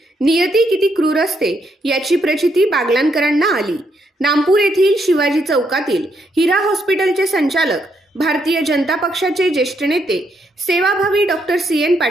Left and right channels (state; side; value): normal; both; correlation 0.76